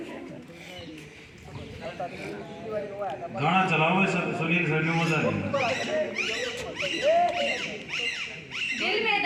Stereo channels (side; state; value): both; identical; correlation 1.00